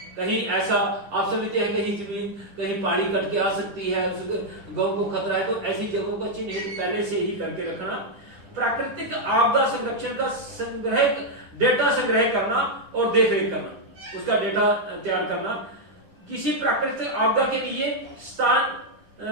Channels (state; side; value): late; left; 9.9 ms